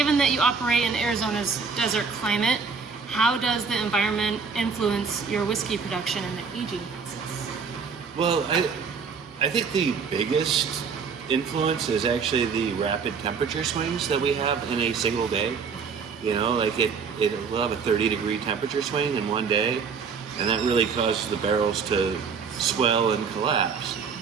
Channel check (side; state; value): left; quieter; 5.7 dB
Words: that you operate in Arizona's desert climate, how does the environment influence your whiskey production and the aging process? Well, I think the biggest influence is actually the rapid temperature swings that we have in a single day. We'll have a 30-degree temperature swing in one day, and that really causes the barrels to swell and collapse.